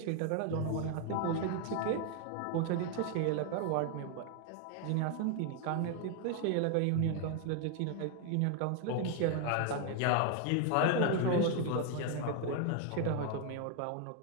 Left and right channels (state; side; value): different; both; correlation 0.01